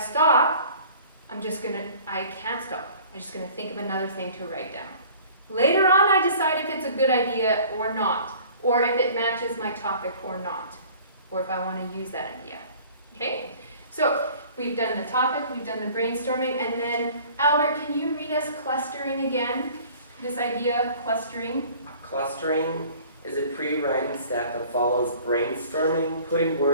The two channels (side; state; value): both; inverted; correlation -0.49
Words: I can't stop. I'm just going to think of another thing to write down. Later on, I decide if it's a good idea or not, or if it matches my topic or not, or if I want to use that idea. Okay? So we've done the topic, we've done the brainstorming, and then Albert, can you read us clustering again? This idea, clustering. Clustering is a pre-writing step that follows brainstorming, putting